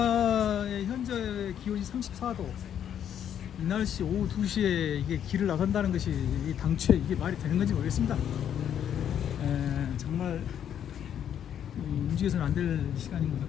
현재 기온이 34도. 이 날씨 오후 2시에 이게 길을 나선다는 것이 당초에 이게 말이 되는 건지 모르겠습니다. 정말 움직여서는 안 될 시간인 것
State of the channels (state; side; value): quieter; right; 9.5 dB